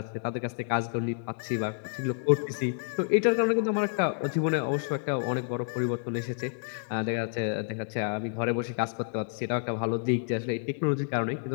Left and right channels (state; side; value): silent; right; digital silence